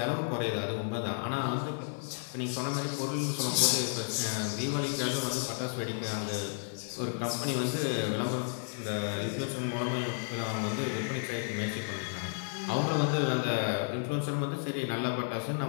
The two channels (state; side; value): silent; right; 56 dB below the other